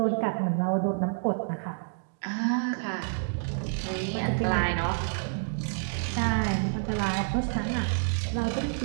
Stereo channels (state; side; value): silent; left; digital silence